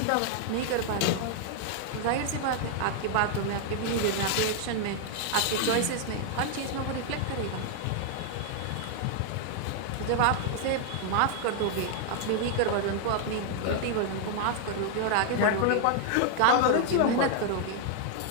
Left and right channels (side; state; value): both; different; correlation 0.00